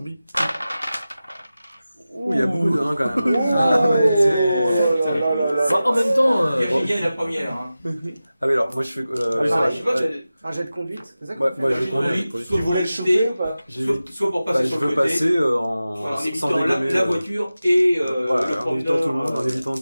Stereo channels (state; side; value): inverted; both; correlation -0.95